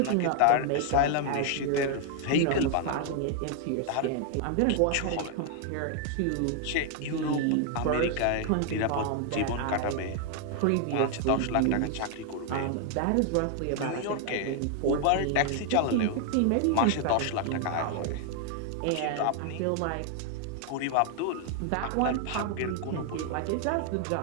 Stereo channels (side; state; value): both; different; correlation 0.00